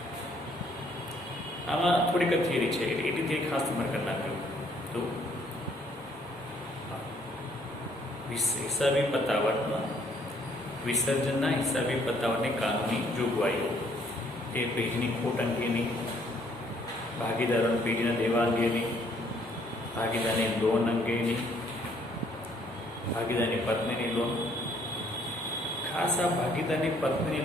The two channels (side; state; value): both; normal; correlation 0.65